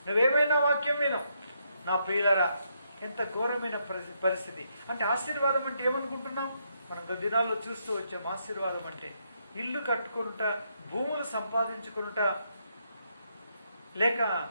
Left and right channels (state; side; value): inverted; both; correlation -0.77